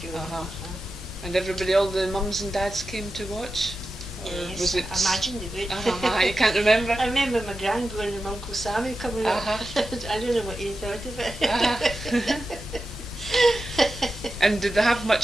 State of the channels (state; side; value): normal; both; correlation 0.92